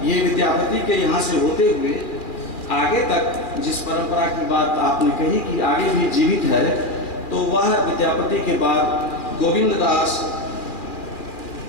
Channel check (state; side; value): late; right; 2.4 ms